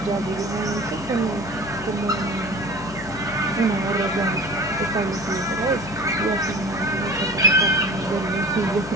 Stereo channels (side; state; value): left; noise; hum, 15 dB below the sound